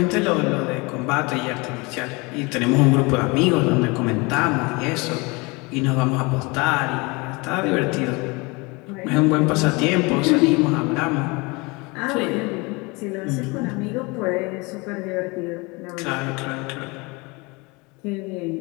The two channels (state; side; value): quieter; right; 26.6 dB